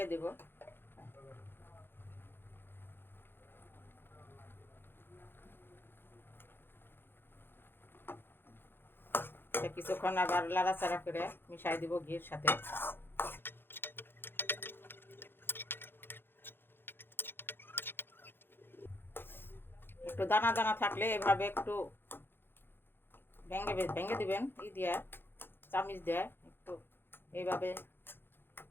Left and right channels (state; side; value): late; right; 0.10 ms